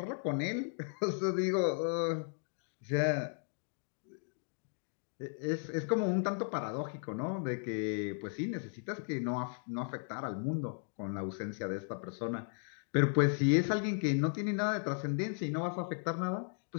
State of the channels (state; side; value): silent; right; 54 dB below the other